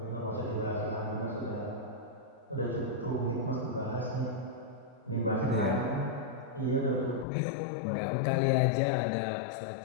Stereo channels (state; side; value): drops out; right; at 7.2 s